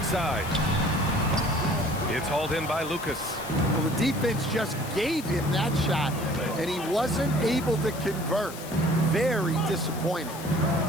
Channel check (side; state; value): left; noise; hiss, 14 dB below the sound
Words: It's hauled in by Lucas. Well, the defense just gave him that shot, and he wasn't able to convert. Very disappointing.